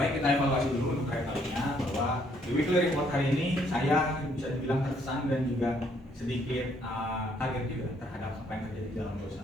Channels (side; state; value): both; normal; correlation 0.68